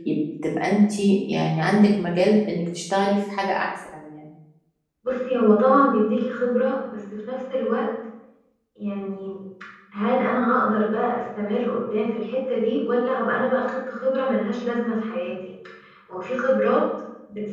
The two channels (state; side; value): identical; both; correlation 1.00